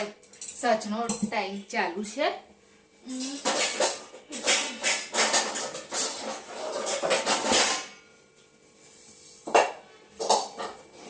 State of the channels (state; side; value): identical; both; correlation 1.00